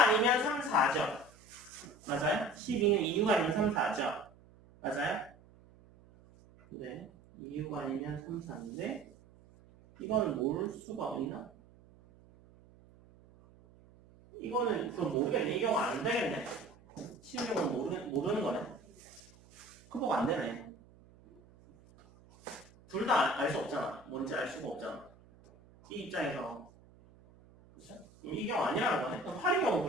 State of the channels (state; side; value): noise; right; hum, 25 dB below the sound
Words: 3, 4죠. 맞아요? 12는 2, 6 아니면 3, 4죠. 맞아요? 네. 2, 6 아니면 3, 4인데 이거는 모를 수가 있나? 이거는 그럼 모르겠네. 이 경우 안 되겠네. 쉬운 경우는 모르는 거네. 극복 안 되네. 둘 다 알 수 없잖아. 뭔지 알 수가 없잖아. 이 입장에서. 그쵸? 이 경우 아니라는 거네. 그럼 8의 경우